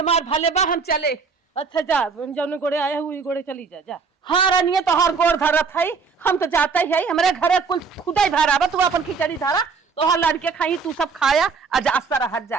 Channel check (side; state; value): left; quieter; 5.1 dB